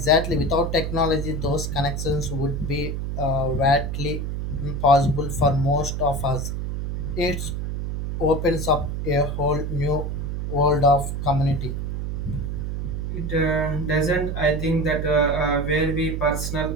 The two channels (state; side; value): noise; right; hum, 3 dB below the sound